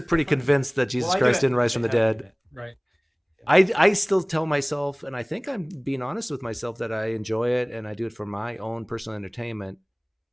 pretty convinced that Jesus Christ didn't rise from the dead. Right. I still tell myself, and I think I'm being honest with myself, that I enjoy it and I do it for my own personal entertainment.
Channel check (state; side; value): identical; both; correlation 1.00